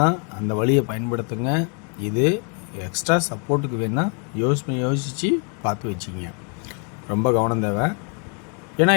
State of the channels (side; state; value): right; quieter; 38.9 dB